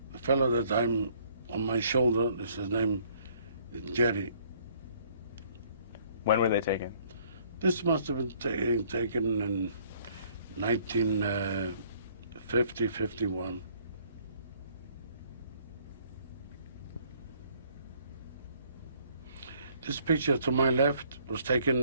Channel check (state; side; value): inverted; both; correlation -0.62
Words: The fellow that I'm on my shoulder, his name is Jerry. When were they taken? This must have been taken in 1950, 51. This picture to my left was